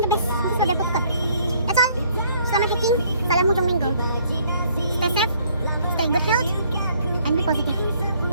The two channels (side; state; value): both; inverted; correlation -0.63